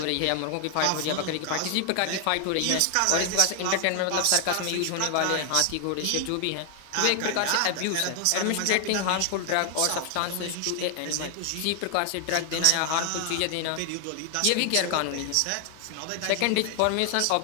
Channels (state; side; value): different; both; correlation 0.00